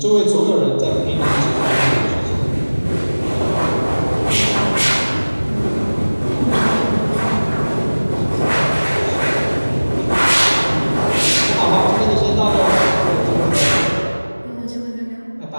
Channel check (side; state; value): both; inverted; correlation -1.00